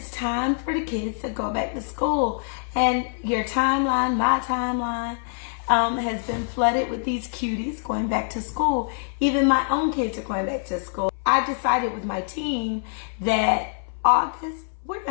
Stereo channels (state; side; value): silent; right; 62 dB below the other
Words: time for the kids to go back to school. And your timeline, my timeline, has been flooded with these cuties going back to school. Even my own kids are going back to school. I decided with my team that August, we're